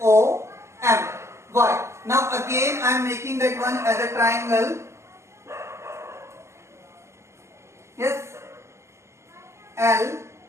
LOM. Why? Now again I am making that one as a triangle. Yes.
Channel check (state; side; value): late; left; 0.13 ms